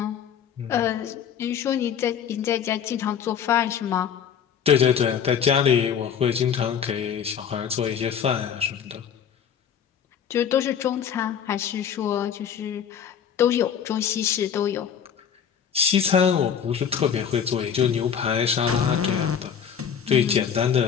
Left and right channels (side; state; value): right; quieter; 8.0 dB